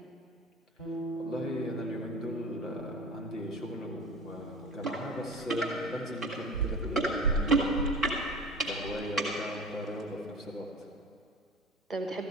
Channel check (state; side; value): normal; both; correlation 0.37